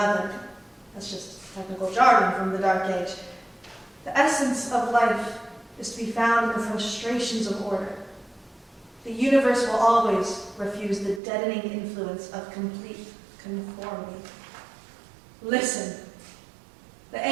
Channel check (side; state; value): left; drops out; at 11.2 s